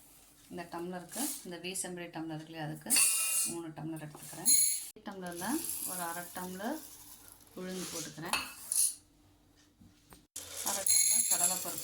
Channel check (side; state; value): both; identical; correlation 1.00